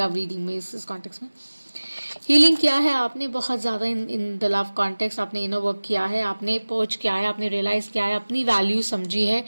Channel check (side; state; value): both; inverted; correlation -1.00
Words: रीडिंग में, इस कॉन्टेक्स्ट में. हीलिंग किया है आपने बहुत ज़्यादा इन द लव कॉन्टेक्स्ट. आपने इनर वर्क किया है, आपने पर्च किया है, आपने रियलाइज़ किया है, अपनी वैल्यू समझी है,